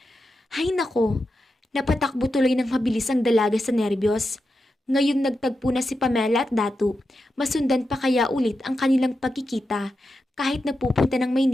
Hay nako, napatakbo tuloy ng mabilis ang dalaga sa nerbiyos. Ngayong nagtagpo na si Pamela at Datu, masundan pa kaya ulit ang kanilang pagkikita kahit napupunta ng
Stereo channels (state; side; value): normal; both; correlation 0.88